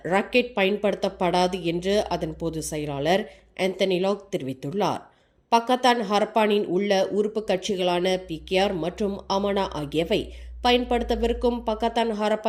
ராக்கெட் பயன்படுத்தப்படாது என்று அதன் பொதுச் செயலாளர் ஆந்தனி லாக் தெரிவித்துள்ளார். பக்கத்தான் ஹரப்பானின் உள்ள உறுப்பு கட்சிகளான PKR மற்றும் அமனா ஆகியவை பயன்படுத்தவிருக்கும் பக்கத்தான்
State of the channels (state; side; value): identical; both; correlation 1.00